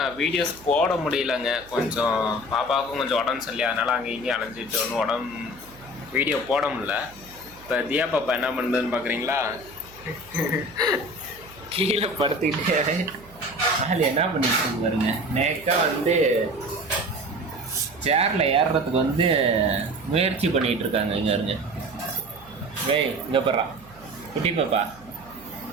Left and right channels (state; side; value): noise; right; hum, 23 dB below the sound